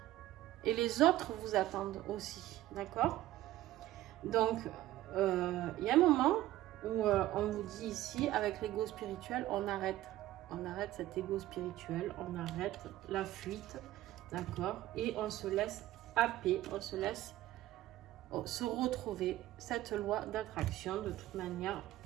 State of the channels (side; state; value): left; quieter; 15.0 dB